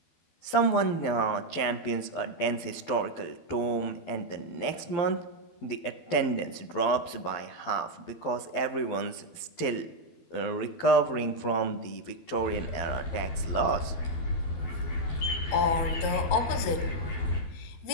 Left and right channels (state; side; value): late; right; 12 ms